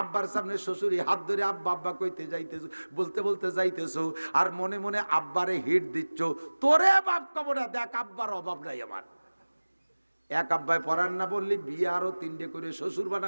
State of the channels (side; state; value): both; inverted; correlation -1.00